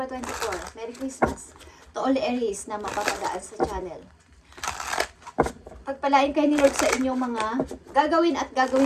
24. Merry Christmas to all Aries na mapapadaan sa channel. Pagpalain kayo ni Lord sa inyong mga gagawin at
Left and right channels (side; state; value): both; identical; correlation 1.00